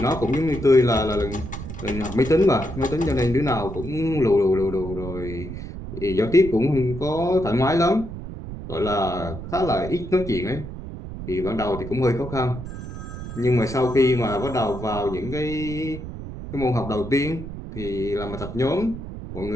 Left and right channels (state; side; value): noise; right; rumble, 9 dB below the sound